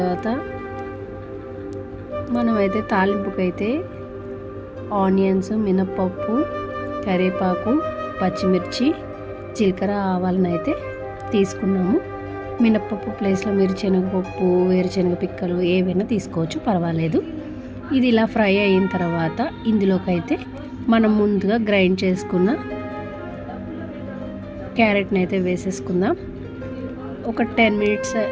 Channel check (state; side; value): identical; both; correlation 1.00